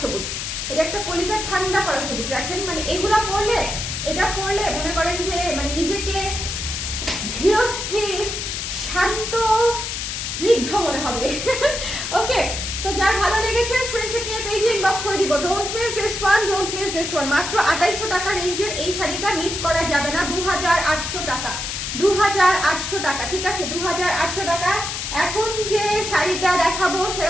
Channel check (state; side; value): noise; left; hiss, 4 dB below the sound